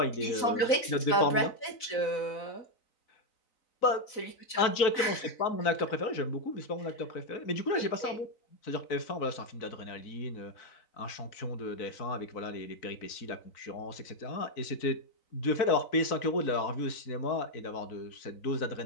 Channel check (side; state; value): right; late; 3.9 ms